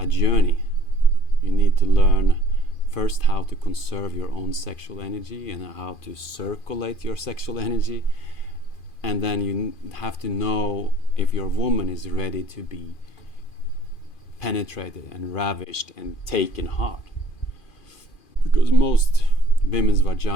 journey. You need to learn first how to conserve your own sexual energy and how to circulate your sexual energy. And then you have to know if your woman is ready to be penetrated and ravished and taken hard. Because most women's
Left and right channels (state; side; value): late; right; 2.4 ms